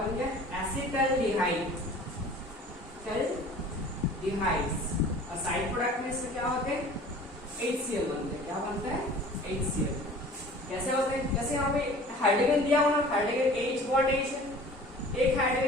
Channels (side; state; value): both; normal; correlation 0.45